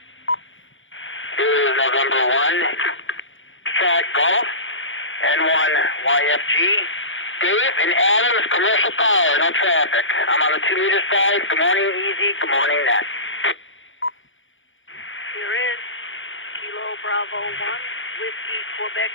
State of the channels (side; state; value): right; late; 0.57 ms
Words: November 1, Fat Golf, N1 YFG, Dave and Adams, Commercial Power, no traffic. I'm on the 2 meter side. Good morning, Easy. Good morning, Net. Here is Kilo Bravo 1, Whiskey Quebec